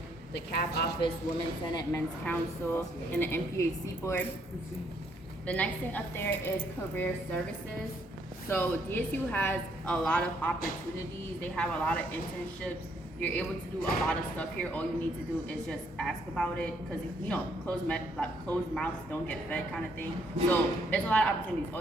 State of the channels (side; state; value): both; normal; correlation 0.70